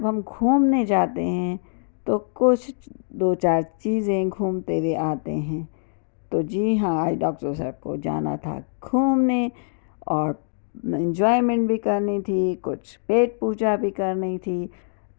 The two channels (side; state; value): right; silent; digital silence